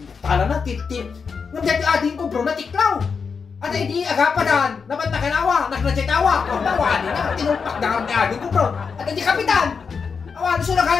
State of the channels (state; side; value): quieter; right; 5.7 dB